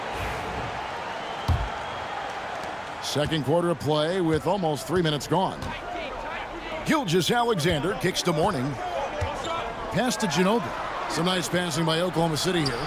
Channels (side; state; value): both; identical; correlation 1.00